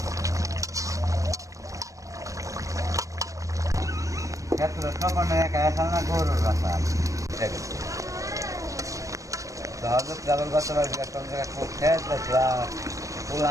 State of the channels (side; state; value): left; late; 0.16 ms